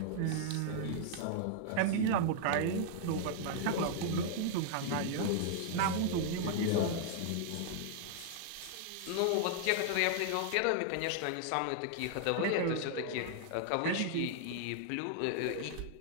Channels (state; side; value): different; both; correlation -0.01